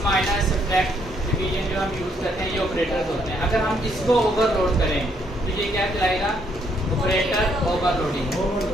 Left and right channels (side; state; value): both; normal; correlation 0.71